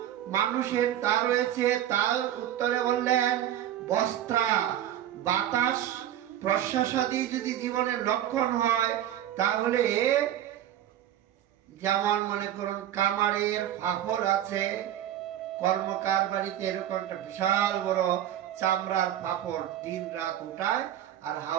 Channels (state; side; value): quieter; left; 11.6 dB